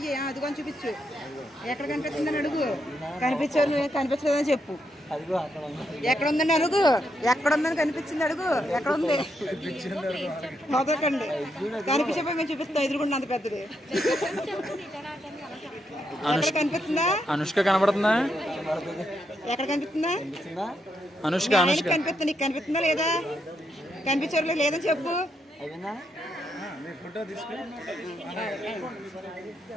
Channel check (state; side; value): normal; both; correlation 0.80